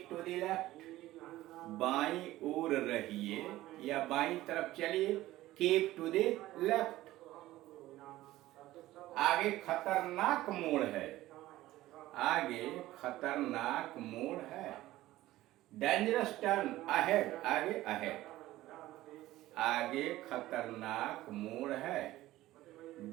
टू द लेफ्ट, बाईं ओर रहिए या बाईं तरफ चलिए, कीप टू द लेफ्ट। आगे खतरनाक मोड़ है, आगे खतरनाक मोड़ है। डेंजरस टर्न अहेड, आगे अहेड, आगे खतरनाक मोड़ है।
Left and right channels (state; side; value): quieter; left; 16.1 dB